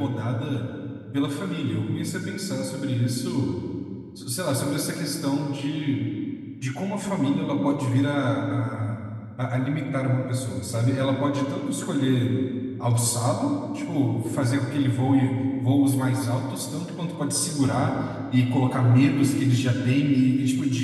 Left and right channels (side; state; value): both; identical; correlation 1.00